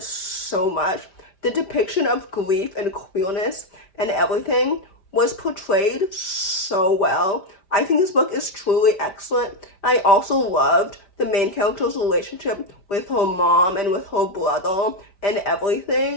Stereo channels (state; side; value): late; right; 5.0 ms